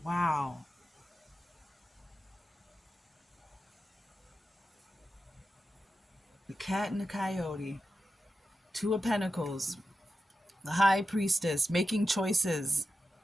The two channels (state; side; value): normal; both; correlation 0.91